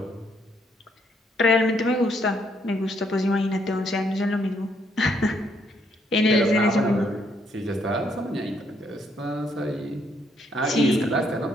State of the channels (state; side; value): normal; both; correlation 0.71